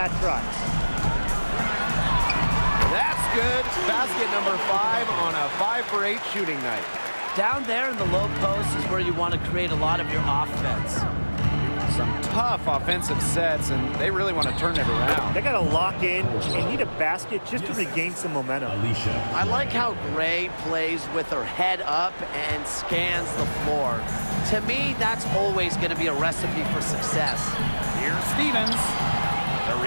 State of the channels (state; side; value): inverted; both; correlation -1.00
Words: try. That's good. Basket number 5 on a 5 for 8 shooting night. Down there in the low post is where you want to create a lot of your offense. Some tough offensive sets, and they really want to turn it around. They got to lock in and need a basket just to regain some momentum. Alicia. I like how Gray plays with her head up and scans the floor. To me, that's always going to be a recipe for success. Here's Stevens. The